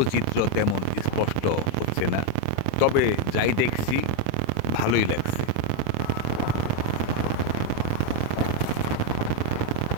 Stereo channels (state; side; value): different; both; correlation 0.01